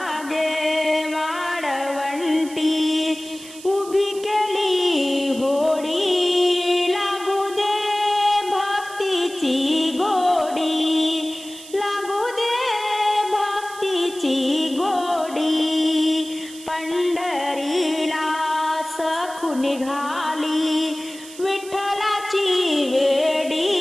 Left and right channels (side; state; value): right; noise; hiss, 17 dB below the sound